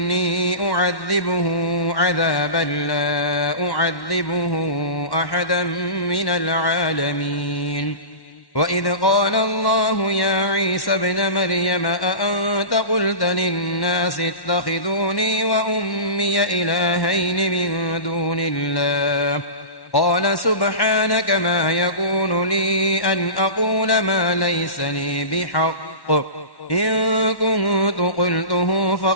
أعذبه عذابا لا أعذبه أحدا من العالمين وإذ قال الله يا عيسى ابن مريم أأنت قلت للناس اتخذوني وأمي إلهين من دون الله قال سبحانك ما يكون لي أن أقول ما ليس لي بحق إن كنت قلته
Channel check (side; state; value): right; late; 1.1 ms